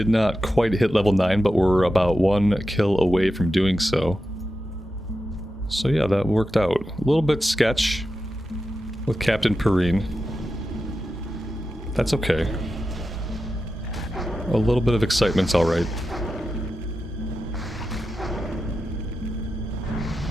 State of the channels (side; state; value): both; normal; correlation 0.90